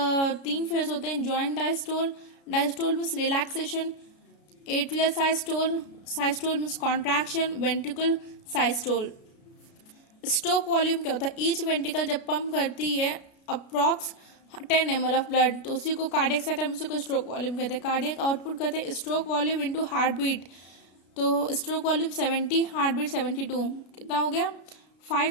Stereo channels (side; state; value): right; late; 33 ms